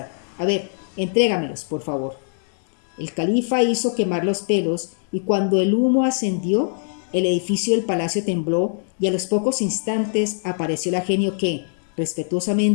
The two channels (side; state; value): right; silent; digital silence